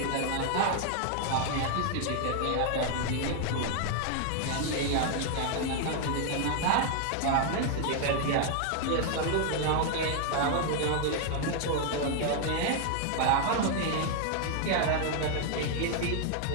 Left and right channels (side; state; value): both; different; correlation 0.00